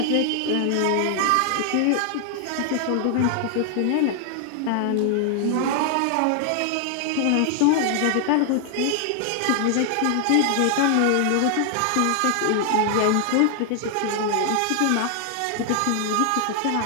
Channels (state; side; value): different; both; correlation 0.00